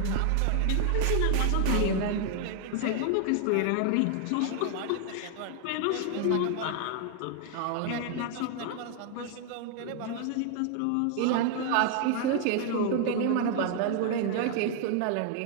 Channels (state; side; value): different; both; correlation 0.00